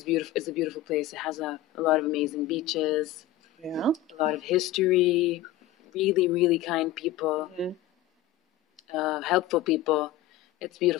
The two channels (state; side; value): quieter; right; 12.1 dB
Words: beautiful. It's a beautiful place. It has a lot of amazing beaches. Yeah. A lot of history. Really, really kind people. Mm-hmm. Helpful people. It's